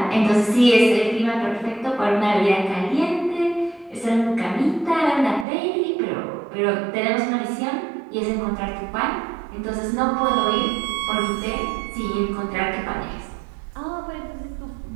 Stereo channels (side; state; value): left; drops out; at 5.5 s